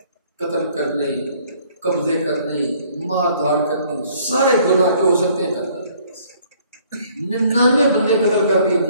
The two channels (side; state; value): both; inverted; correlation -0.60